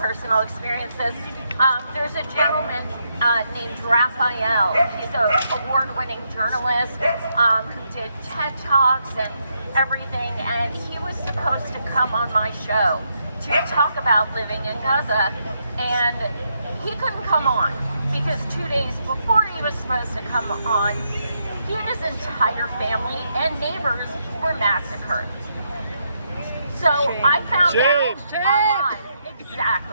experiences. There's a gentleman named Raphael. He's an award-winning journalist who did TED Talks and everything, and he was supposed to come come on my show to talk about living in Gaza, and he couldn't come on because 2 days before he was supposed to come on, he and his entire family and neighbors were massacred. So I found out online.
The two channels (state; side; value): inverted; both; correlation -0.79